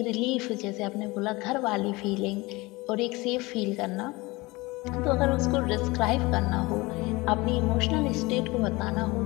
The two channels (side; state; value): right; quieter; 22.7 dB